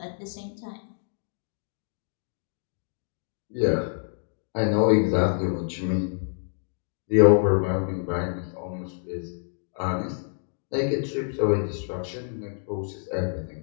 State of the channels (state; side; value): silent; right; digital silence